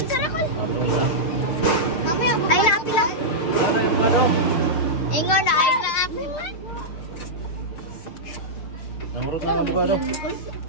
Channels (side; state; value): right; late; 6.4 ms